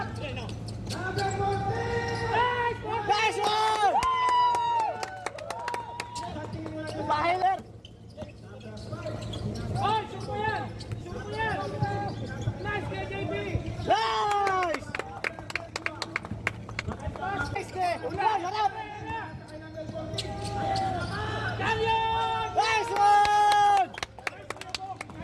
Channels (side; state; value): both; identical; correlation 1.00